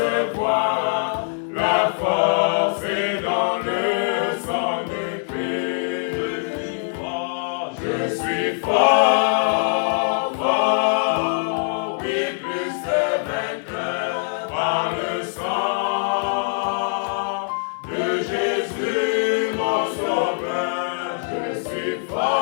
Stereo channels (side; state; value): right; silent; 64 dB below the other